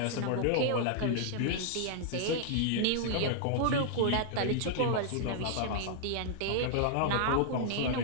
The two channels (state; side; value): different; both; correlation -0.01